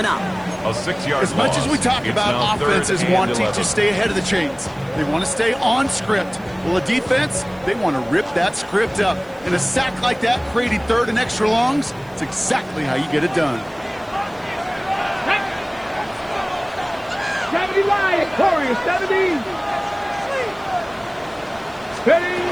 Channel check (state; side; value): noise; right; hiss, 29 dB below the sound